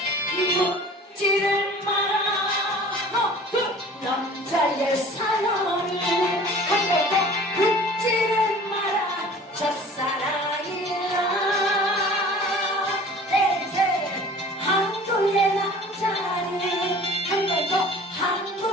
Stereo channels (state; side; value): normal; both; correlation 0.45